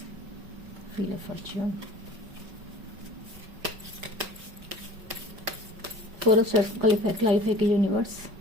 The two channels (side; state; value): left; late; 5.3 ms